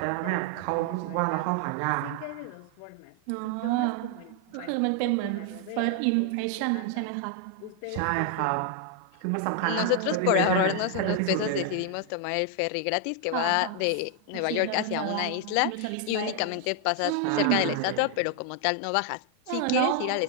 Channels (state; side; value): different; both; correlation 0.00